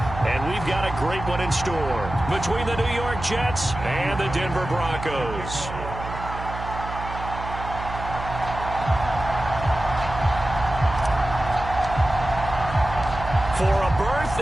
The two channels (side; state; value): right; noise; hum, 9 dB below the sound